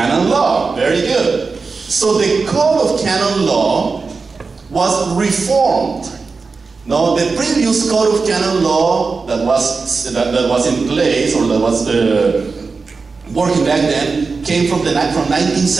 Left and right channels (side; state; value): left; quieter; 4.5 dB